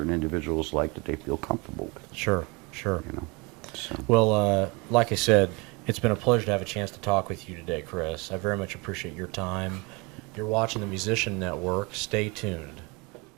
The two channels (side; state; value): left; quieter; 28.1 dB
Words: individuals like that they feel comfortable with. Sure. So. So. Well, like I said, it's been a pleasure to have a chance to talk with you today, Chris. I very much appreciate your time. You're watching the Musician Network. Stay tuned.